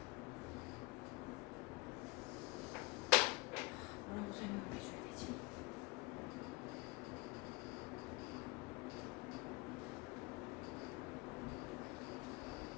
뭐라고 설명을 해줘야 되지?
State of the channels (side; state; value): right; quieter; 25.1 dB